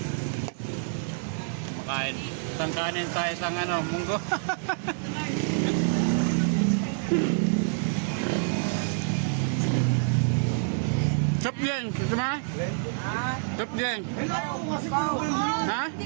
Makain. Isang kanin sa isang munggo. Chop yan. Gusto mo? Chop yan. Ha? Hindi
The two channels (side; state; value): left; silent; digital silence